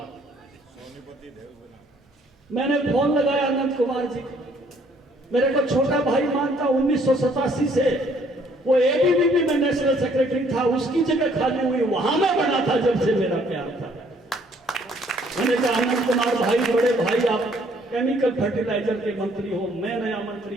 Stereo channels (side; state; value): both; normal; correlation 0.63